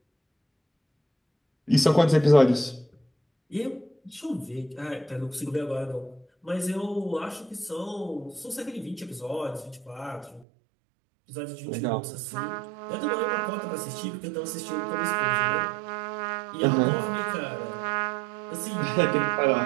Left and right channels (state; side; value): drops out; left; at 10.5 s